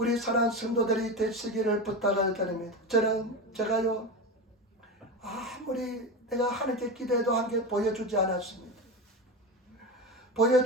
사랑하는 성도들이 되시기를 부탁을 드립니다. 제가요, 아무리 내가 하나님께 기도해도 하나님께 보여주지 않았습니다.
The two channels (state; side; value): normal; both; correlation 0.21